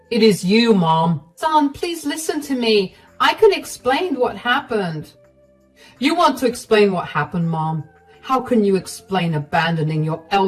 it is you, Mom." "Son, please listen to me. I can explain what happened." You want to explain what happened, Mom? How can you explain abandoning your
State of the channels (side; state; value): both; identical; correlation 1.00